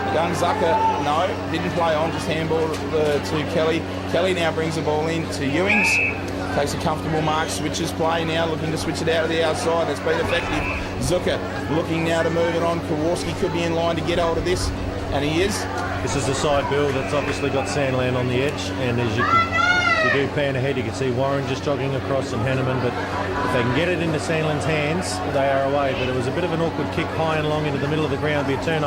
Young Zucker, no, didn't play on, just handball to Kelly. Kelly now brings the ball in to Ewings. Takes a comfortable mark, switches play now, looking to switch it out of the outside. It's been effective. Zucker looking now to move it on. Kowalski could be in line to get hold of this, and he is. This is the side, Bill, that's obviously got Sandland on the edge, and as you do pan ahead, you can see Warren just jogging across and Hanneman, but if they can get it into Sandland's hands, they are away. But it was a bit of an awkward kick high and long into the middle of the ground, be a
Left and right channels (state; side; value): identical; both; correlation 1.00